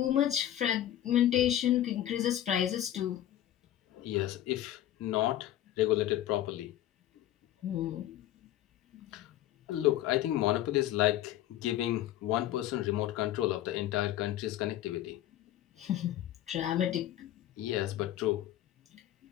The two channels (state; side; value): quieter; right; 12.7 dB